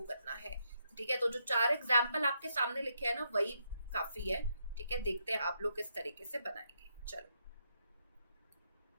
करना है, ठीक है। तो जो 4 एग्जाम्पल आपके सामने लिखे हैं ना वही काफी है, ठीक है। देखते हैं आप लोग किस तरीके से बनाएंगे। चलो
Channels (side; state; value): both; inverted; correlation -0.79